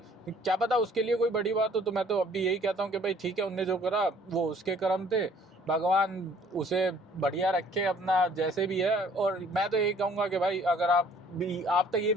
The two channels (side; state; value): both; normal; correlation 0.57